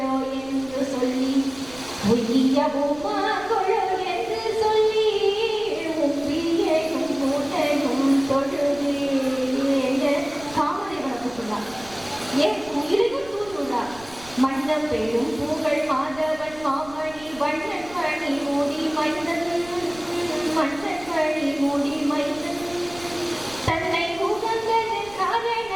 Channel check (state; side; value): noise; right; rumble, 20 dB below the sound